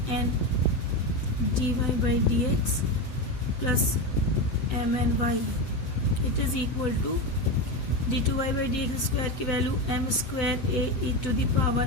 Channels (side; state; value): right; late; 7.9 ms